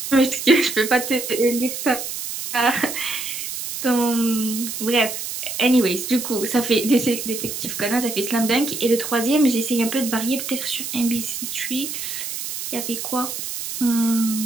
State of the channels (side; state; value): right; noise; hiss, 6 dB below the sound